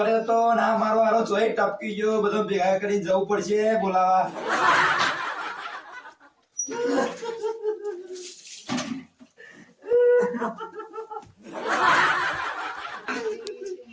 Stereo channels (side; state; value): both; identical; correlation 1.00